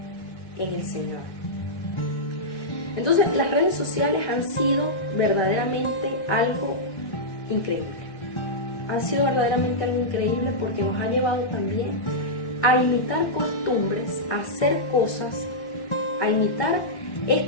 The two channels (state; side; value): late; right; 1.8 ms